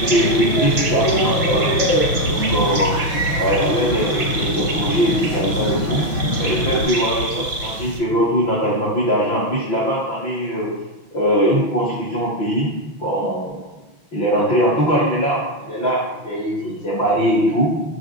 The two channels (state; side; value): late; right; 6.0 ms